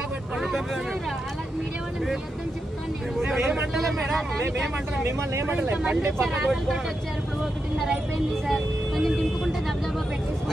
మిమ్మల్ని ఏమంటలే బండి పక్కకు పెట్టుకోండి.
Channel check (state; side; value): normal; both; correlation 0.86